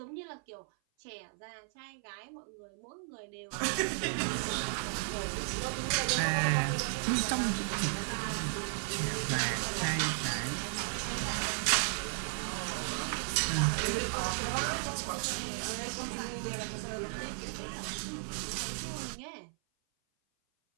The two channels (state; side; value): silent; left; 55 dB below the other